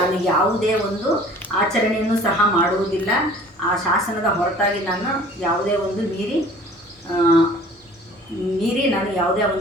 ಯಾವುದೇ ಒಂದು ಆಚರಣೆಯನ್ನು ಸಹ ಮಾಡುವುದಿಲ್ಲ. ಆ ಶಾಸನದ ಹೊರತಾಗಿ ನಾನು ಯಾವುದೇ ಒಂದು ಮೀರಿ ನಾನು ಯಾವುದೇ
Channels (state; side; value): normal; both; correlation 0.49